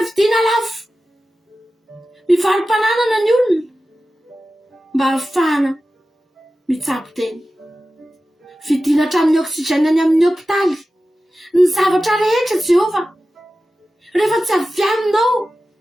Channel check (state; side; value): normal; both; correlation 0.94